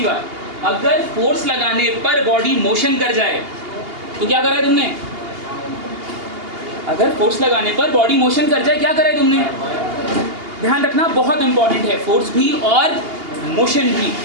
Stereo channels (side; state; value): left; late; 2.8 ms